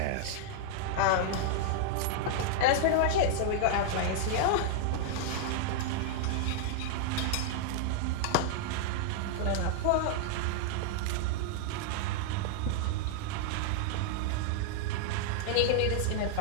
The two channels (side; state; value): both; different; correlation -0.01